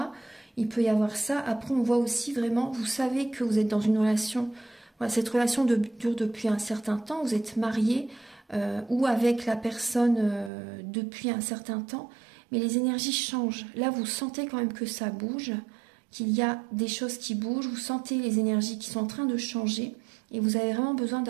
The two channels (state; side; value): drops out; left; at 10.5 s